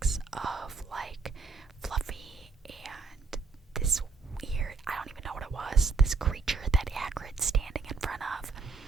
of like Fluffy and this weird, I don't even know what it was, this creature that Hagrid's standing in front of.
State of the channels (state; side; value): quieter; left; 4.5 dB